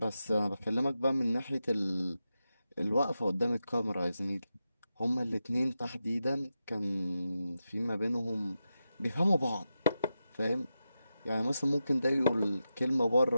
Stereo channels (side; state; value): both; inverted; correlation -0.90